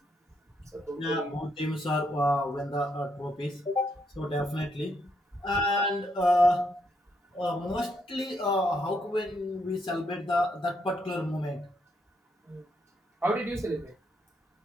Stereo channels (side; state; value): both; normal; correlation 0.76